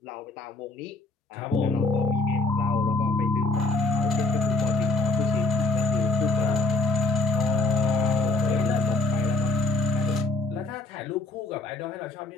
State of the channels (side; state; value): right; quieter; 3.1 dB